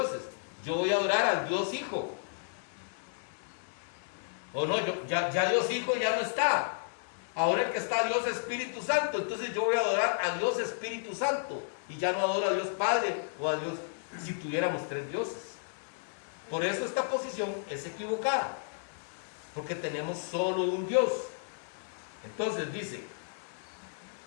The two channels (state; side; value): silent; right; digital silence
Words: yo voy a adorar al Dios Hijo. O no, ya Dios Hijo ya no está. Ahora el que está Dios Espíritu Santo, entonces yo voy a adorar a Dios Espíritu Santo y ya no adoro a Dios Padre o a Dios, si tuviéramos tres dioses. Por eso esta posición es equivocada, porque tenemos solo un Dios. Entonces dice,